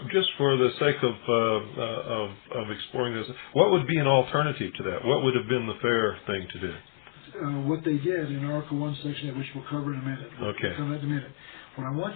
just for the sake of exploring this, what would be an alternative to that? What would have been the fair thing to do? What they did in Article 1, Section 8, which we'll cover in a minute. We'll cover that in a minute. What I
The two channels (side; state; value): right; silent; digital silence